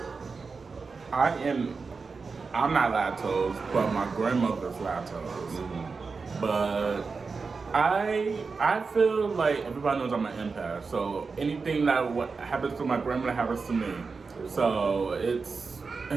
I'm not lactose, but my grandmother's lactose. But I feel like everybody knows I'm an empath, so anything that what happens to my grandmother happens to me. So it's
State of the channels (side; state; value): left; quieter; 4.6 dB